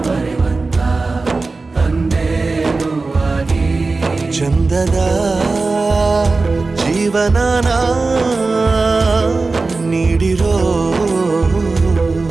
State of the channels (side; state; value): left; quieter; 3.7 dB